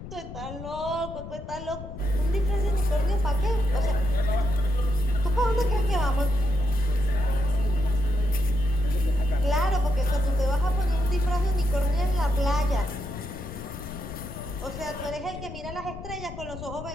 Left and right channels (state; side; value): noise; left; rumble, 11 dB below the sound